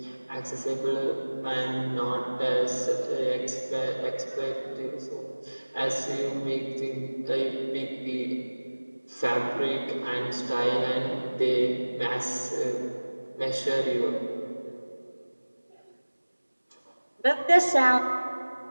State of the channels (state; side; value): inverted; both; correlation -1.00